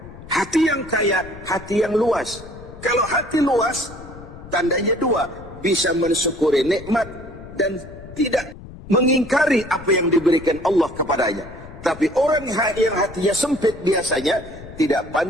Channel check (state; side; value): noise; left; rumble, 16 dB below the sound